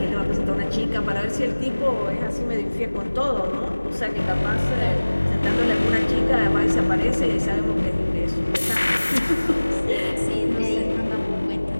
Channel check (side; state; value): both; inverted; correlation -1.00